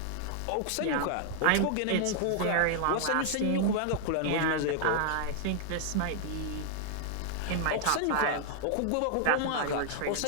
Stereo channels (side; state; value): both; different; correlation 0.00